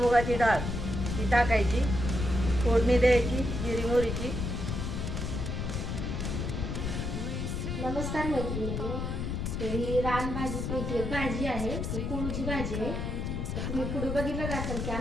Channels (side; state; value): left; noise; rumble, 2 dB below the sound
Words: डाळ ती टाकायची, फोडणी द्यायची जिरी मोहरीची. नमस्कार मैत्रिणींनो, ही रानभाजीपैकी एक भाजी आहे, ती कोळूची भाजी आहे. तर तुम्ही पुढे बघितलं असेल की